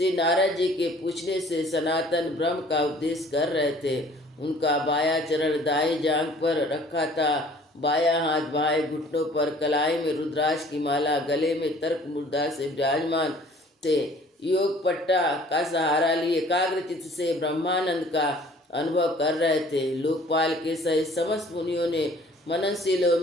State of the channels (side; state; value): both; normal; correlation 0.53